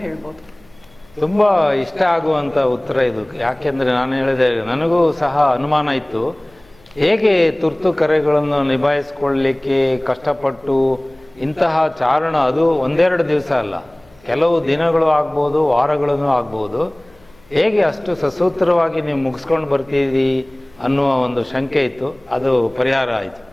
ಹೇಳ್ಬೋದು. ತುಂಬ ಇಷ್ಟ ಆಗುವಂಥ ಉತ್ತರ ಇದು. ಯಾಕೆಂದರೆ ನಾನು ಹೇಳಿದೆ, ನನಗೂ ಸಹ ಅನುಮಾನ ಇತ್ತು, ಹೇಗೆ ತುರ್ತು ಕರೆಗಳನ್ನು ನಿಭಾಯಿಸ್ಕೊಳ್ಳಲಿಕ್ಕೆ ಕಷ್ಟಪಟ್ಟು ಇಂತಹ ಚಾರಣ, ಅದು ಒಂದೆರಡು ದಿವಸ ಅಲ್ಲ, ಕೆಲವು ದಿನಗಳು ಆಗ್ಬೋದು, ವಾರಗಳೂ ಆಗ್ಬೋದು, ಹೇಗೆ ಅಷ್ಟು ಸಸೂತ್ರವಾಗಿ ನೀವು ಮುಗಿಸ್ಕೊಂಡು ಬರ್ತೀರಿ ಅನ್ನುವ ಒಂದು ಶಂಕೆ ಇತ್ತು. ಅದು ಪರಿಹಾರ ಆಯಿತು.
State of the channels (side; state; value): left; noise; hum, 29 dB below the sound